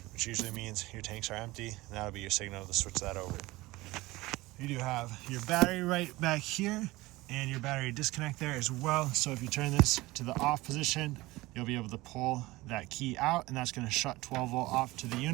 which usually means your tanks are empty, and that'll be your signal to switch that over. You do have your battery right back here and your battery disconnect there as well. So if you turn this to the off position, you'll be able to pull that key out, and that's going to shut 12 volt off to the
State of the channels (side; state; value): left; quieter; 19.9 dB